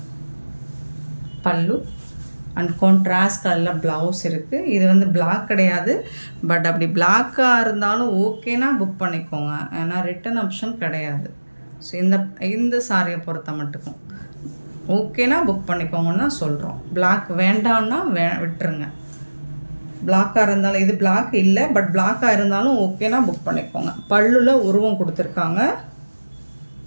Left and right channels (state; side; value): inverted; both; correlation -1.00